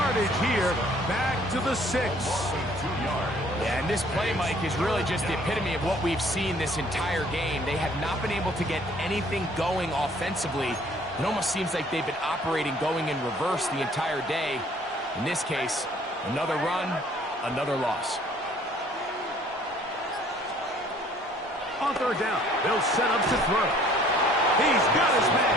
here. Back to the 6. Yeah, and this play, Mike, is really just the epitome of what we've seen this entire game. They have not been able to get anything going offensively. It almost seems like they've been operating going in reverse the entire day. In this case, another run, another loss. On 3rd down, they'll set up to throw. He's got his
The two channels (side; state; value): both; normal; correlation 0.58